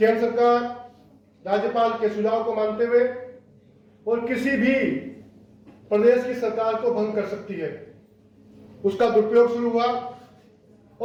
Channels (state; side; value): identical; both; correlation 1.00